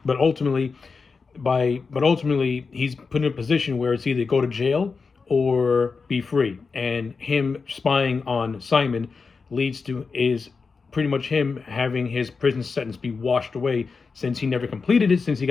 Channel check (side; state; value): right; quieter; 4.8 dB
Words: But ultimately he's put in a position where it's either go to jail or be free. And him spying on Simon leads to is pretty much him having his prison sentence be washed away since he never completed it, since he